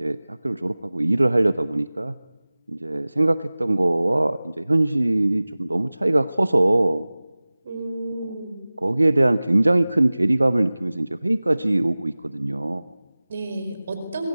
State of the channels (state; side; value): inverted; both; correlation -0.98